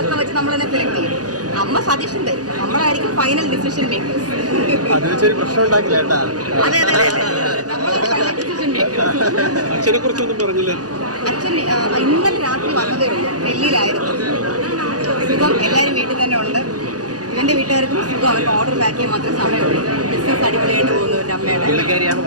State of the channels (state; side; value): late; left; 0.68 ms